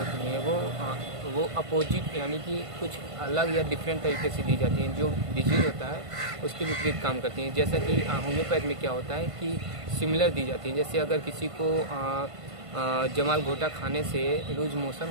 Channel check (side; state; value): left; late; 1.5 ms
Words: हैं वो अपोजिट यानी कि कुछ अलग या डिफरेंट तरीके से दी जाती हैं। जो डिजीज़ होता है उसके विपरीत काम करती हैं। जैसा कि होम्योपैथ में क्या होता है कि सिमिलर दी जाती हैं। जैसे अगर किसी को जमाल घोटा खाने से लूज मोशन